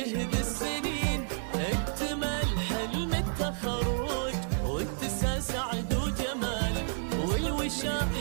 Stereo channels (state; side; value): silent; left; digital silence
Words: السنين. اكتمال حلم التخرج واتساع سعد وجمال،